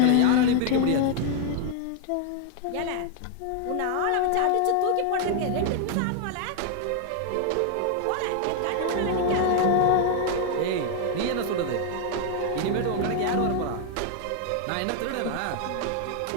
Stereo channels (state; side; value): different; both; correlation 0.00